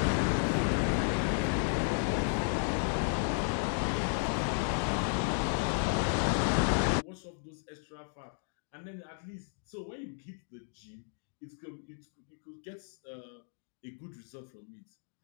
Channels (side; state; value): right; silent; digital silence